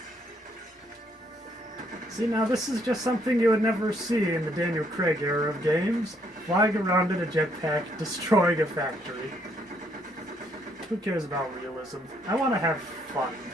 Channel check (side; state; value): both; normal; correlation 0.70